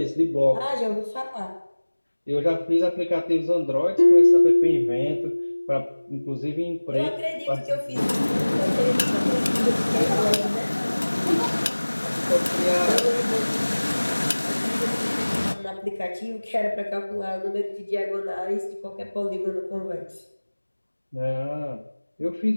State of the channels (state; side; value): inverted; both; correlation -1.00